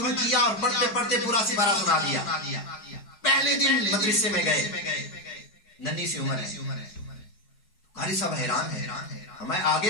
کیا اور پڑھتے پڑھتے پورا سپارہ سنا دیا. پہلے دن مدرسے میں گئے, ننھی سی عمر ہے. قاری صاحب حیران ہے, ہمیں آگے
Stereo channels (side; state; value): right; late; 4.8 ms